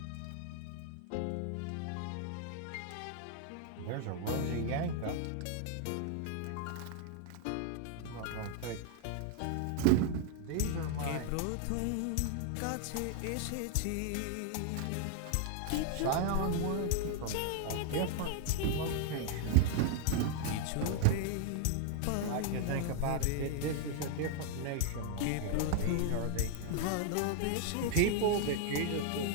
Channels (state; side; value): different; both; correlation 0.00